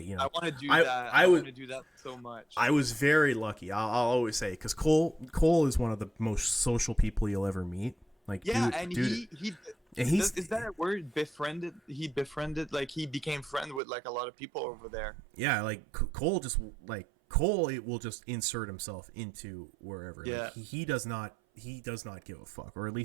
I want to do that. I want to do that so much. I was very lucky. I'll always say, because Cole is one of the most social people you'll ever meet. He And he's Is that a word? Befriended? He befriended, like he became friend with like a lot of people over there. yeah, like Cole just like Cole, it will just insert himself into wherever. Like Yeah. he does not give a fuck, or at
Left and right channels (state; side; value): drops out; left; at 13.8 s